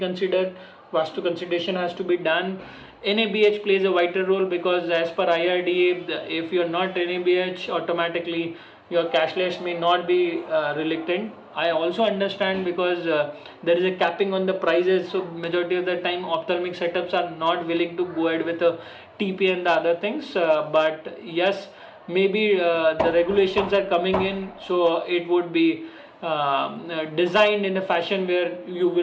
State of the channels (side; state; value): both; identical; correlation 1.00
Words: Vastu consideration has to be done. NABH plays a vital role, because as per IRDA, if you're not NABH, automatically your cashless may not be reluctant. I also understand, because there is a capping on the prices, so majority of the time ophthalmic setups are not willing to go ahead with a TP and the other things. But yes, maybe the regulations are coming in, so it would be designed in a fashion where you